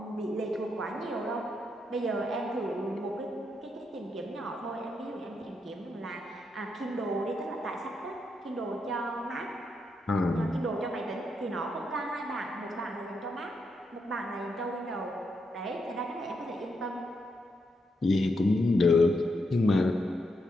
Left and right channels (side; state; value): both; normal; correlation 0.81